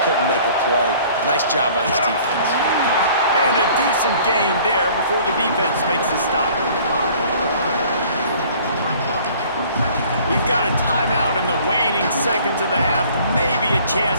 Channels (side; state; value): both; inverted; correlation -0.53